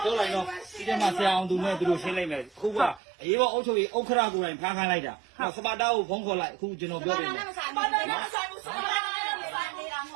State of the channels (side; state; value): left; drops out; at 3.0 s